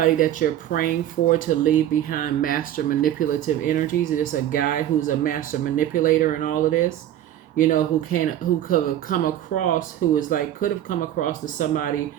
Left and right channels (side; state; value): left; quieter; 11.8 dB